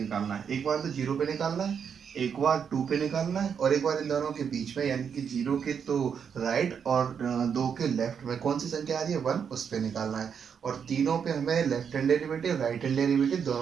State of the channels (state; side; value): quieter; left; 7.2 dB